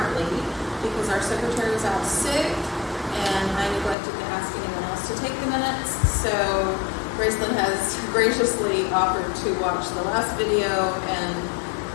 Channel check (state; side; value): drops out; right; at 4.0 s